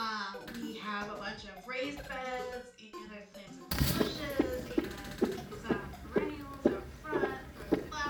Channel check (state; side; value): identical; both; correlation 1.00